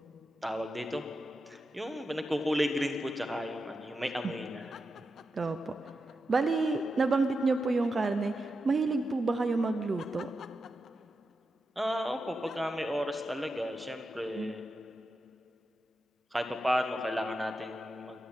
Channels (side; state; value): both; normal; correlation 0.88